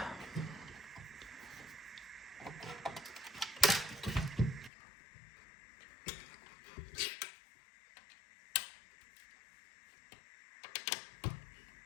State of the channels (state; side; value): drops out; right; at 4.7 s